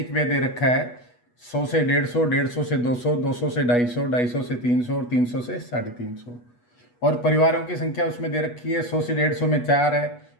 व्यय दे रखा है 100 से 150, 150 से 200, 200 से 250, 250 से 300 और 300 से 350। और परिवारों की संख्या उसमें दे रखी है 100 से 150 में 4 है,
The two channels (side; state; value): right; late; 8.2 ms